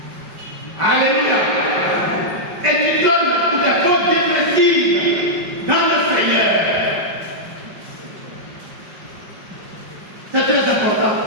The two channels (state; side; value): late; left; 5.2 ms